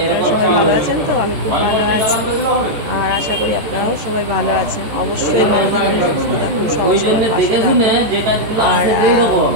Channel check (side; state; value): left; late; 14 ms